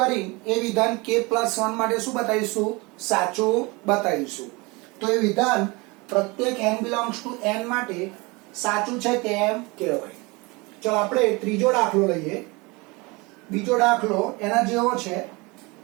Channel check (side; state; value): left; quieter; 25.8 dB